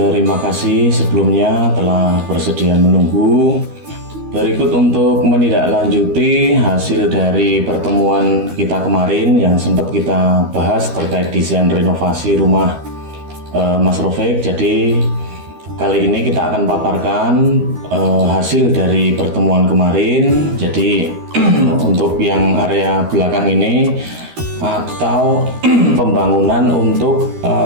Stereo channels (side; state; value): left; late; 13 ms